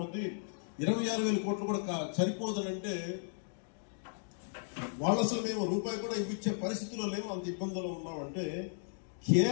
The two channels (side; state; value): right; silent; digital silence